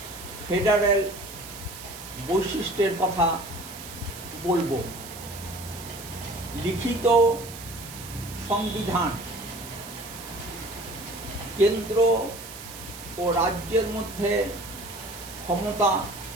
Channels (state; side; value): noise; right; hiss, 13 dB below the sound